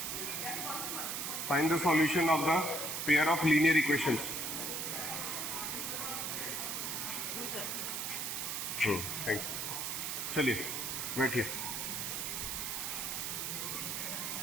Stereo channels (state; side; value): noise; right; hiss, 2 dB below the sound